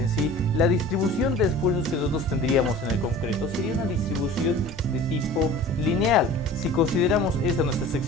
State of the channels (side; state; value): both; normal; correlation 0.42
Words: sí la distribución de esfuerzos que nosotros tendríamos en el concreto sería una distribución de tipo lineal. Si consideramos esta nuestra